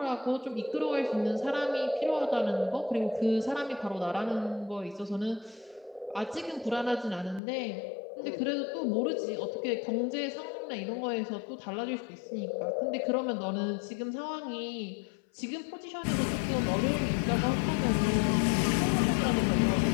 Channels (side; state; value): right; drops out; at 7.4 s